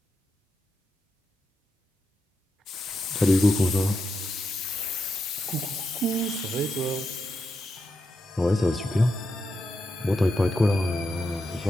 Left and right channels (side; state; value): both; normal; correlation 0.85